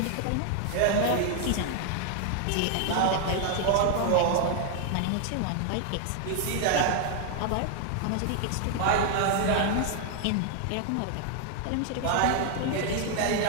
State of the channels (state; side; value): different; both; correlation 0.00